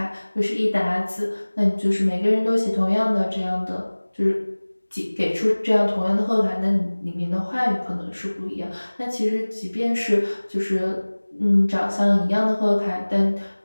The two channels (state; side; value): inverted; both; correlation -1.00